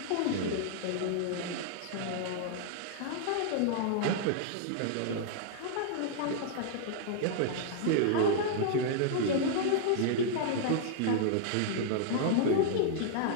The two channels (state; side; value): different; both; correlation -0.01